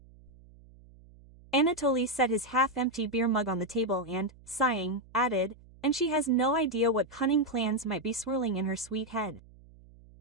Anatoly set his half-empty beer mug on the table and, sighing, added, "And she has no idea what cunning plans might be swirling in her sweet head."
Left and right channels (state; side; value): noise; right; hum, 24 dB below the sound